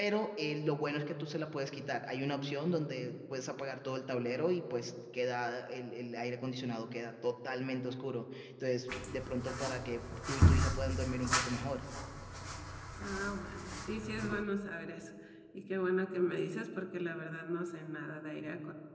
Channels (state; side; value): identical; both; correlation 1.00